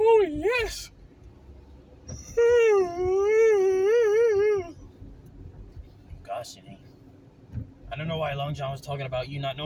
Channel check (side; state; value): both; identical; correlation 1.00